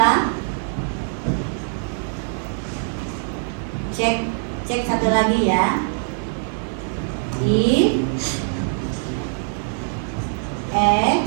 Cek satu lagi ya. If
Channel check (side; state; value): left; silent; 58 dB below the other